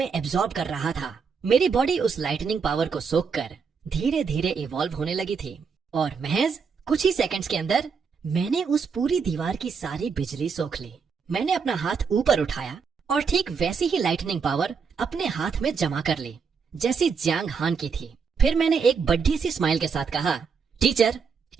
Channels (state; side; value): quieter; left; 5.8 dB